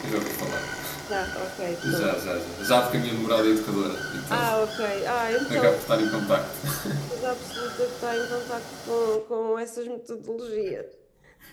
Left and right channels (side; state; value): both; identical; correlation 1.00